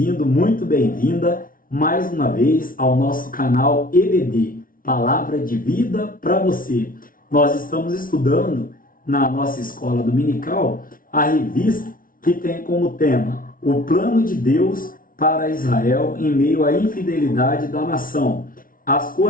muito bem-vinda mais uma vez ao nosso canal EBD, Palavra de Vida para você. Nós estamos estudando na nossa escola dominical a revista que tem como tema o plano de Deus para Israel em meio à infidelidade da nação, as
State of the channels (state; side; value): late; right; 0.41 ms